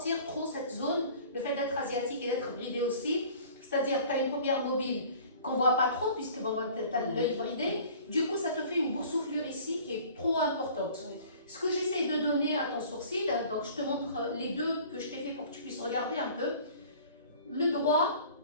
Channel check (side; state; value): both; inverted; correlation -0.48